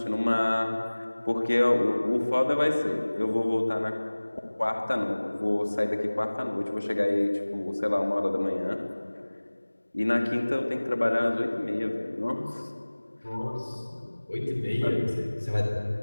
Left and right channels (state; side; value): inverted; both; correlation -1.00